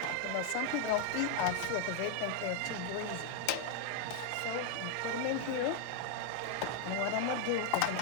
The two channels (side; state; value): both; different; correlation 0.00